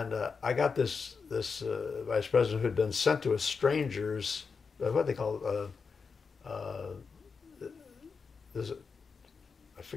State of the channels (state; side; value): quieter; right; 5.2 dB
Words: got this vice president who had been sent to a stranger's, what they call, I